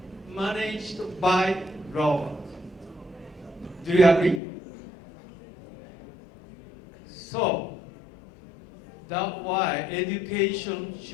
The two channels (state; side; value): drops out; right; at 4.4 s